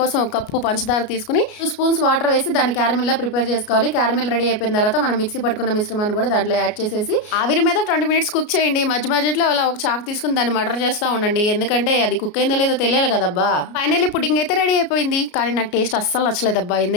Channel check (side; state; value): right; late; 33 ms